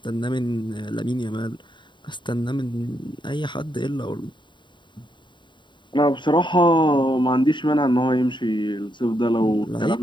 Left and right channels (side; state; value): right; late; 0.23 ms